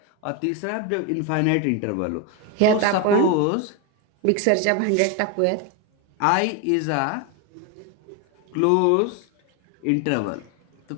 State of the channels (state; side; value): different; both; correlation 0.02